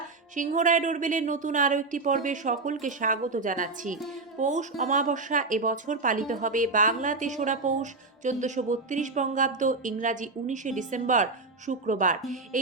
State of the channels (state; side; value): quieter; left; 3.7 dB